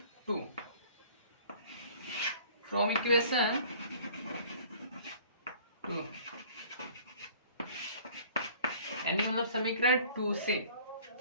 2। फ्रॉम इक्वेशन 2 यानी मतलब समीकरण 2 से।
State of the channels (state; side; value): inverted; both; correlation -0.50